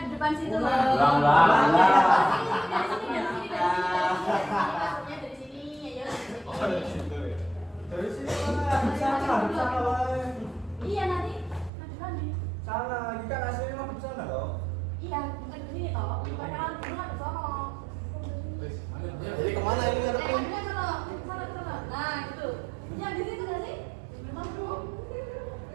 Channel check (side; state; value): left; drops out; at 11.7 s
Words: depan situ loh. Dari sini ya. Dari sini sana. Iya nanti. Sana, ini kan aslinya mah di sana toh. Iya, bukan di sini toh. Perkenalan dulu ada sono. Jadi kemana ini ngadepin? Sana. Nah, gitu. Yang di situ nggak sih? Memang bro.